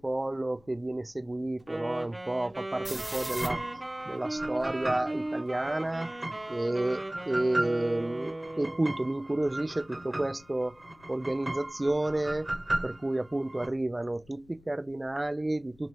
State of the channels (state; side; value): noise; left; rumble, 28 dB below the sound